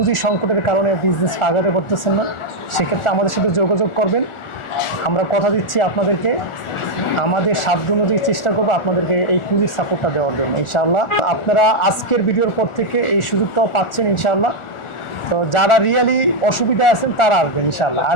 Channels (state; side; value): late; right; 1.4 ms